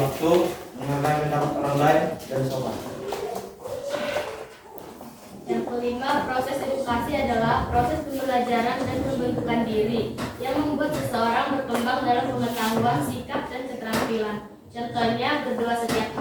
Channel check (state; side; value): identical; both; correlation 1.00